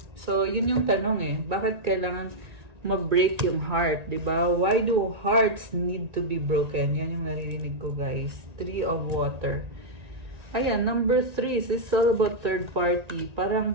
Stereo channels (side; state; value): left; late; 1.9 ms